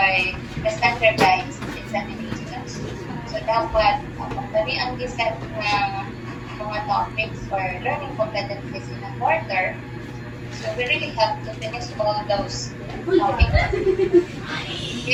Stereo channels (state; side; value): identical; both; correlation 1.00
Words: the standardized examinations. So dapat kami ang giset ng mga topics for learning competencies in a quarter. So we really have to finish all those topics.